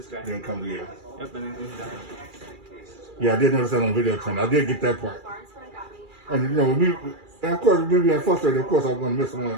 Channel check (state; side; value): late; left; 2.3 ms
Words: guy. Then come here. Yep, and then goes down. Yeah, I did notice that on the video channel. I did get that part. And you know, with me, and of course, with me being frustrated, of course, I'm going to miss